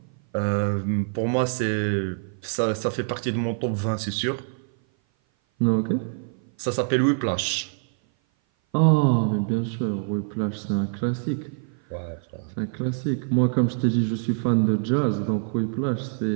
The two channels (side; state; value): left; silent; 56 dB below the other